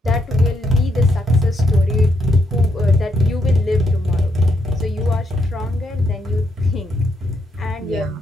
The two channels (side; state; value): both; normal; correlation 0.77